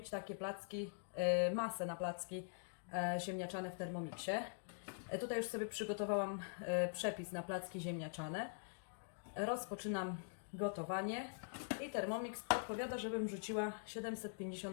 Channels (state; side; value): silent; right; digital silence